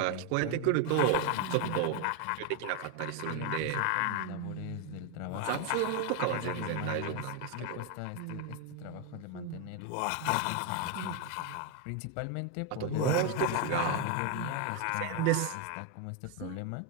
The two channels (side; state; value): both; different; correlation 0.01